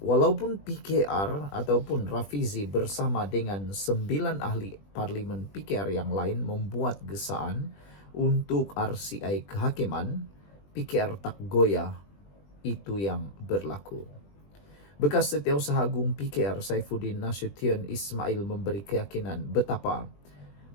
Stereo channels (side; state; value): right; late; 20 ms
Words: walaupun PKR ataupun Rafizi bersama dengan 9 ahli parlimen PKR yang lain membuat gesaan untuk RCI kehakiman, PKR tak goyah, itu yang berlaku. Bekas Setiausaha Agung PKR Saifuddin Nasution Ismail memberi keyakinan betapa